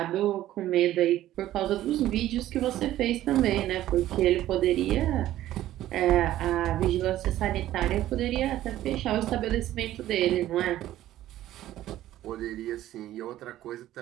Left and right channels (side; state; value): left; quieter; 13.8 dB